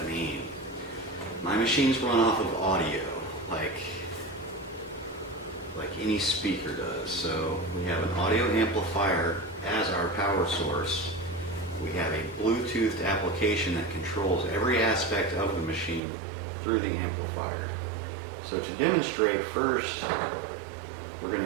mean? My machines run off of audio, like any speaker does. So we have an audio amplifier as our power source. We have a Bluetooth application that controls every aspect of the machine through the amplifier. So to demonstrate, first we're going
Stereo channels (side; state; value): left; drops out; at 16.0 s